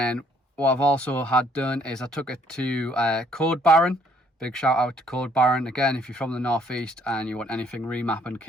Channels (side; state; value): both; normal; correlation 0.64